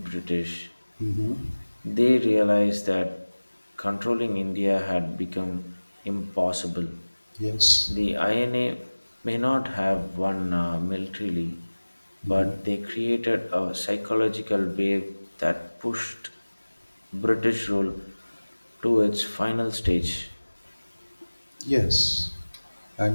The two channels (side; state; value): both; inverted; correlation -1.00